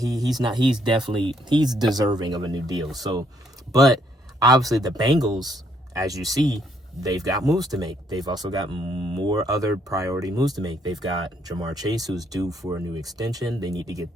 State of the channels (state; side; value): normal; both; correlation 0.70